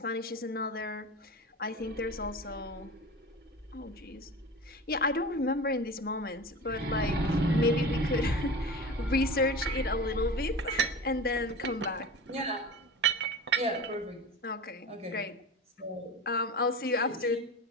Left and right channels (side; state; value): both; normal; correlation 0.32